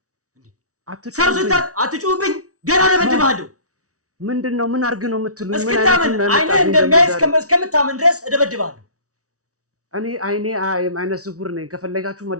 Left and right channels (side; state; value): left; late; 0.66 ms